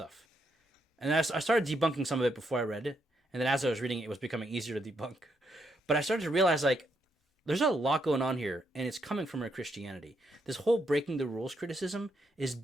And I started debunking some of it before I read it. And then as I was reading it, it was becoming easier to debunk. But I started to realize, like, there's a lot going on here, and it's coming from our Christianity. This whole breaking the rules criticism is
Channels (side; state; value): both; normal; correlation 0.78